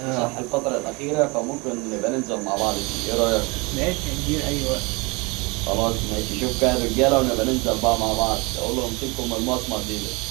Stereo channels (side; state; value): left; quieter; 27.4 dB